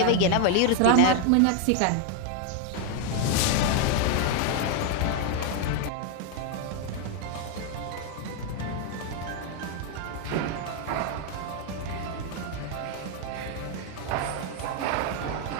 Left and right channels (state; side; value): different; both; correlation 0.00